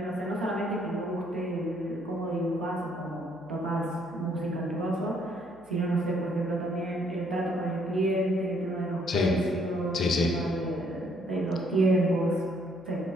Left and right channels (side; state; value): right; noise; hum, 29 dB below the sound